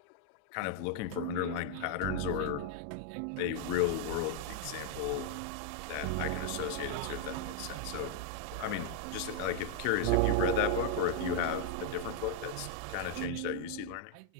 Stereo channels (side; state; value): both; different; correlation 0.00